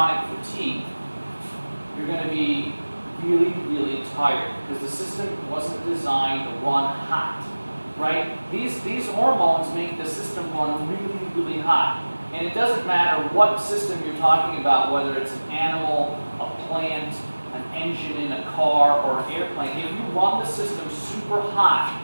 fatigue. You're going to be really, really tired because the system wasn't designed to run hot. right? These hormones make the system run really, really hot. And it doesn't matter what system you're talking about, whether it's an animal, a plant, an engine in a car, or an airplane. If you run the system super hot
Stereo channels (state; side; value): inverted; both; correlation -1.00